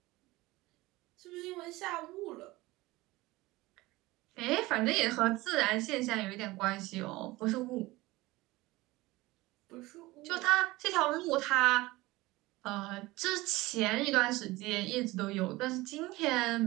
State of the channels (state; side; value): quieter; left; 20.0 dB